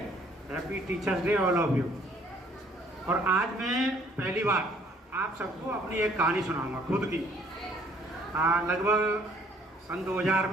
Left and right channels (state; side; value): normal; both; correlation 0.60